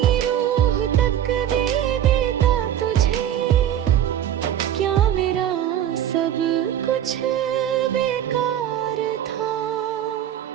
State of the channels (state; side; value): quieter; left; 10.6 dB